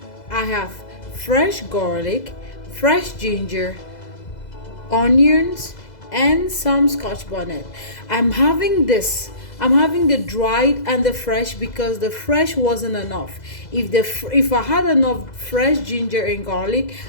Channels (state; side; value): late; right; 2.0 ms